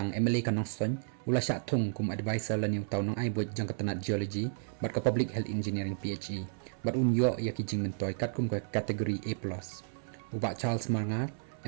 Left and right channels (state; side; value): silent; left; 56 dB below the other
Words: MLA ka Nongson ula syak Thung kum advisor la niu tau nong ai buat jong ka tanat geology bat ka public health engineering PHE bat unyo ya ki jing mentoy kat kum ka kategori A+. Ubak Charles Marngar